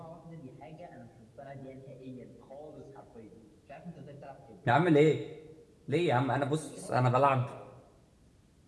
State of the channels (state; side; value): identical; both; correlation 1.00